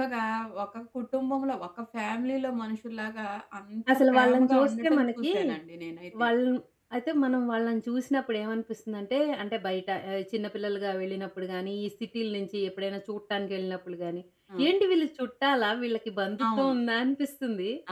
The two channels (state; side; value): identical; both; correlation 1.00